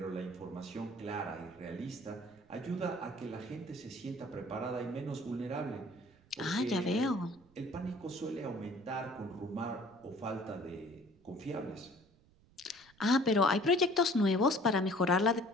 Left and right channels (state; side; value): noise; right; rumble, 29 dB below the sound